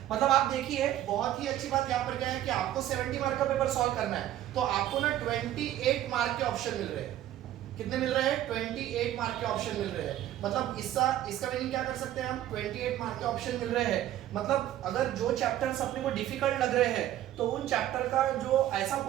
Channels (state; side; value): quieter; left; 12.8 dB